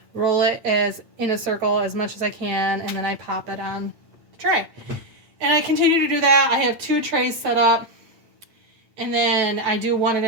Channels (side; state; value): left; late; 9.2 ms